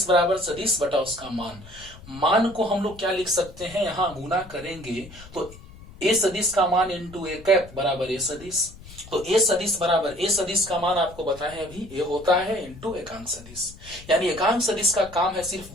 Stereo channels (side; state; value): left; noise; rumble, 18 dB below the sound